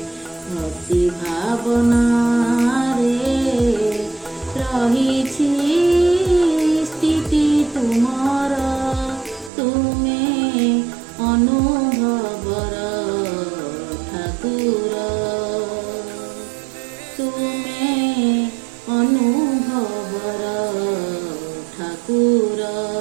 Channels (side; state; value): left; drops out; at 9.5 s